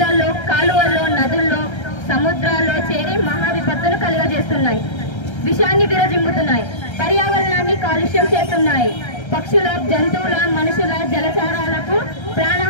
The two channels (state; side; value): late; right; 1.3 ms